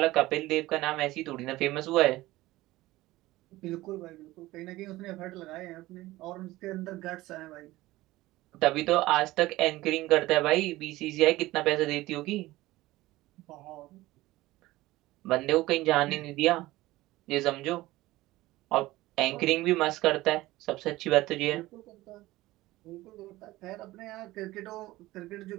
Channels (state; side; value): quieter; left; 18.0 dB